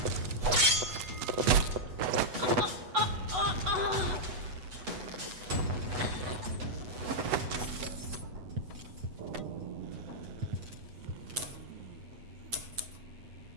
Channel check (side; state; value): left; late; 8.1 ms